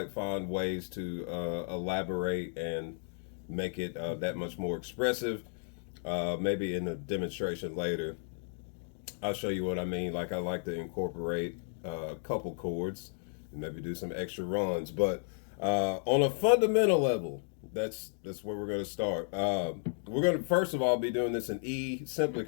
find ways to elaborate and make it that much more expressive. Maybe in a demonstration later, I'll show you what I mean. Like I like to incorporate a couple chords and maybe do some extra runs. But on a fundamental level, that's where we're going to start. We're going to first of all be doing this in E simply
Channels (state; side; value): silent; right; 55 dB below the other